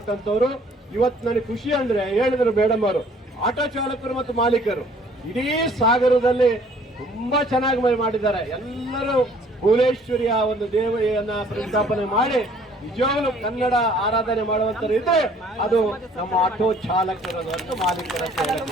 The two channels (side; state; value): both; normal; correlation 0.57